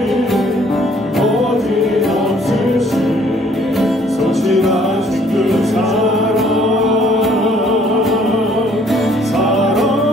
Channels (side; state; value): both; normal; correlation 0.61